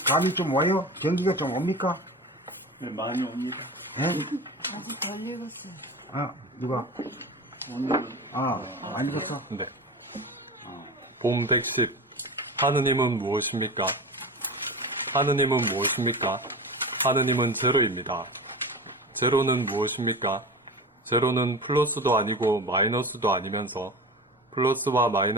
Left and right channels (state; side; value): normal; both; correlation 0.30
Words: 감이 좀 와요? 경기가 좀 옵니까? 네, 많이 옵니다. 예? 아직 덜 읽었어요. 아, 누가? 안 읽었어? 네. 봄 110. 하느님은 무엇입니까? 하느님은 무엇입니까? 하느님은 제로입니다. 제로는 무엇입니까? 제로는 플러스도 아니고 마이너스도 아니면서 플러스와